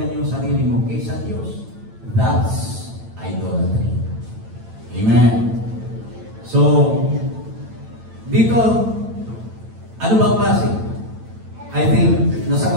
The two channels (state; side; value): late; left; 9.0 ms